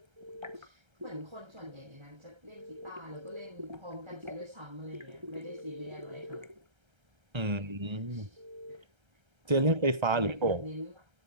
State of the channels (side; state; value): left; late; 1.3 ms